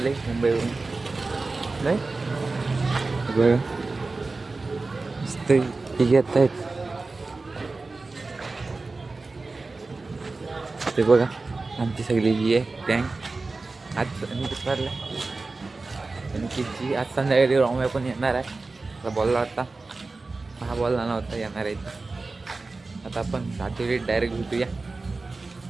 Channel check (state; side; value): quieter; left; 3.6 dB